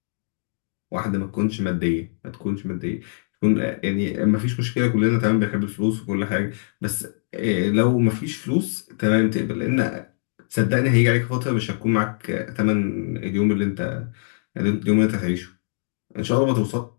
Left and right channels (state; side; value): silent; right; digital silence